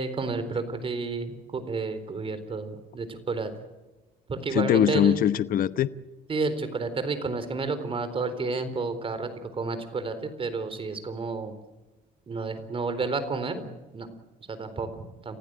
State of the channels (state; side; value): normal; both; correlation 0.46